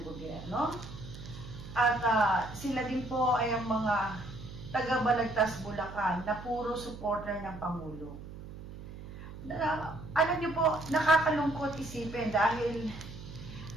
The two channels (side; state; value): right; noise; hum, 13 dB below the sound